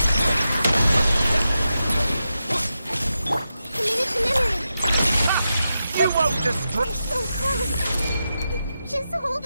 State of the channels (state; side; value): inverted; both; correlation -0.89